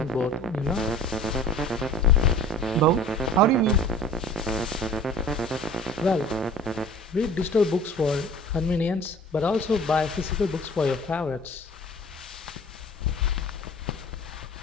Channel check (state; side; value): normal; both; correlation 0.44